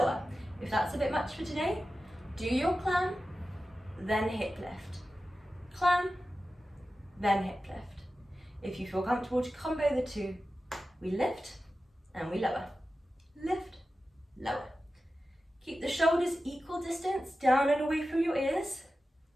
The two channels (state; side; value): normal; both; correlation 0.93